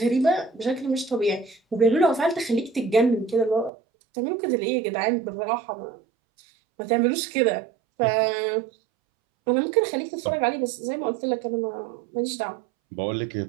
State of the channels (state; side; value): drops out; left; at 3.7 s